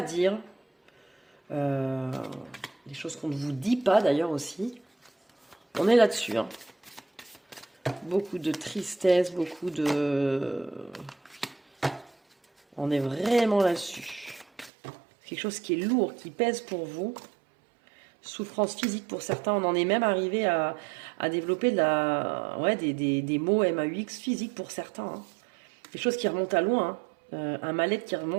dire. Des choses qu'on ne vous dit pas d'ailleurs aussi. On est là-dessus. Hein. Beaucoup de tristesse, beaucoup de... On est vraiment là-dessus. Quelque chose qui est lourd, qui pèse pour vous. Souffrance physique pour certains. On en est même arrivé à développer des mots MAUX physiques pour certains. Hein. Des choses qui remontent à loin. Hein. Un mal-être qui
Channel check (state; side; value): drops out; left; at 14.7 s